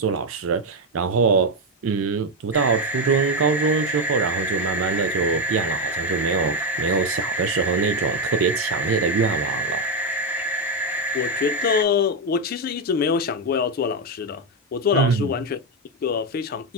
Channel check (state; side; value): normal; both; correlation 0.07